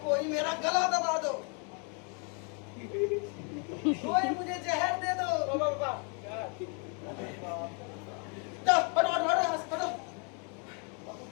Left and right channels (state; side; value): quieter; right; 37.4 dB